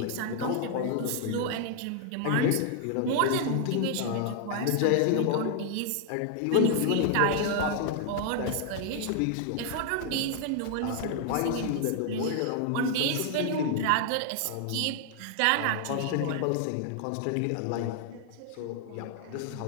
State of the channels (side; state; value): both; different; correlation 0.00